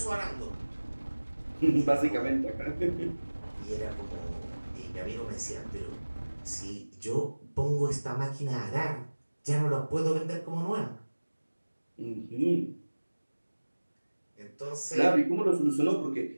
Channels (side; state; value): both; inverted; correlation -1.00